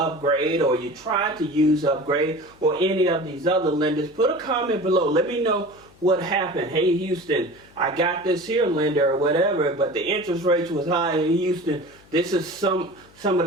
or you tried to use Upgrade, or any of these other lenders, put a comment below. Let me know what happened. Hey Houston, I got this here lender or whatever, but the interest rates was high in Houston. This is some of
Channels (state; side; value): noise; left; hum, 27 dB below the sound